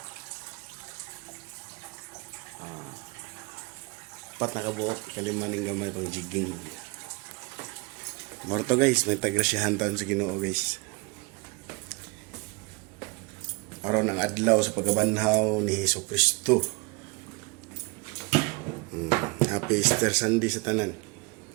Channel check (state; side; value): quieter; left; 28.6 dB